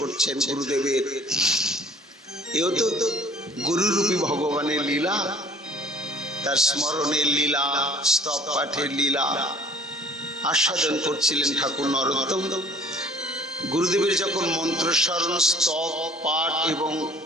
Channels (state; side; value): normal; both; correlation 0.52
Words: গুরুদেবের। এও তো গুরুরূপী ভগবানের লীলা, তার স্মরণের লীলা, স্তব পাঠের লীলা। আস্বাদন করছিলেন ঠাকুর নরোত্তম। গুরুদেবের যখন মন্ত্রস্মরণ, স্তব, পাঠ এবং